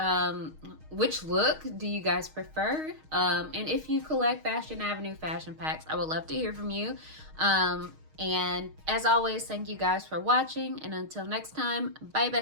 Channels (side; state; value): left; late; 6.4 ms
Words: Which look do you guys prefer? And if you collect Fashion Avenue fashion packs, I would love to hear from you. And as always, thank you guys for watching. And until next time, bye